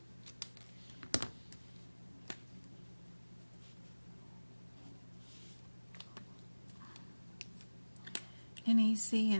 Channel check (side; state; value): both; inverted; correlation -1.00